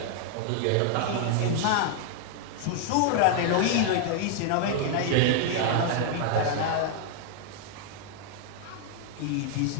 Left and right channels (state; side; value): different; both; correlation 0.00